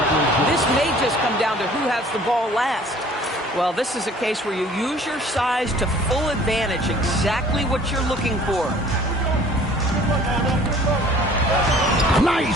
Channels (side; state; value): both; normal; correlation 0.52